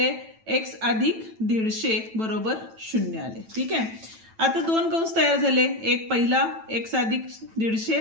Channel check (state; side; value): late; left; 9.1 ms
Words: x अधिक 150 बरोबर 0 आले. ठीक आहे. आता दोन कंस तयार झाले, एक पहिला x अधिक